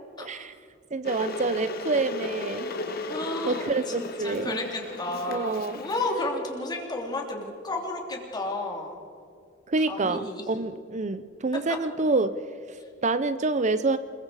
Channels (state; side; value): normal; both; correlation 0.20